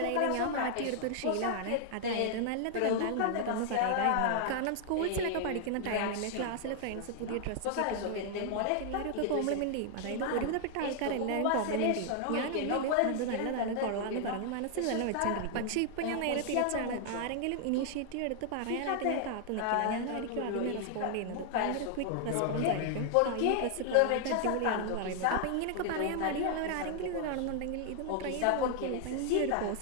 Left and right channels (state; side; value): different; both; correlation 0.00